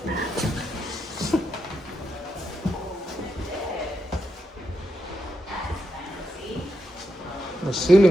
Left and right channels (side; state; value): both; normal; correlation 0.84